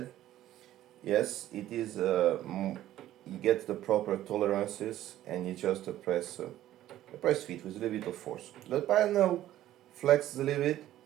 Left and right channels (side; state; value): left; quieter; 13.4 dB